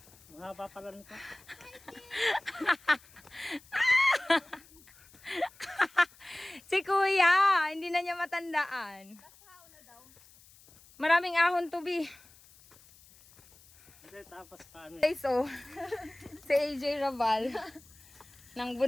Mahaba pala nito. Si Kuya, hindi na niya matandaan. Maraming ahon to, Bi. Hindi, tapos paano? Okay, so, si AJ Rabal ng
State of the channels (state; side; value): noise; left; hiss, 25 dB below the sound